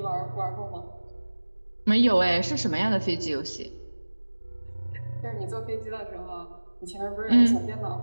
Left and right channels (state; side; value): inverted; both; correlation -1.00